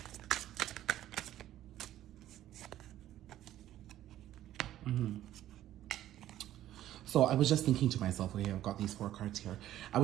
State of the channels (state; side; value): quieter; left; 13.0 dB